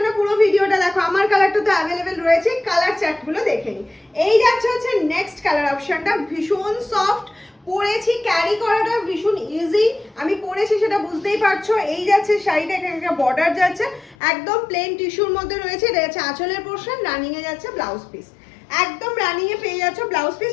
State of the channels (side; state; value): right; drops out; at 14.2 s